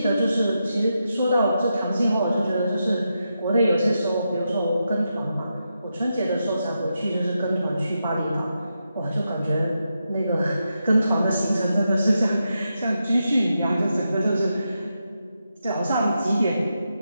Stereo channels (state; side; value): inverted; both; correlation -0.86